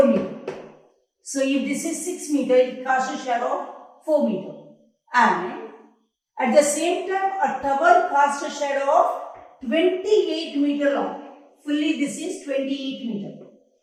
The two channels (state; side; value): identical; both; correlation 1.00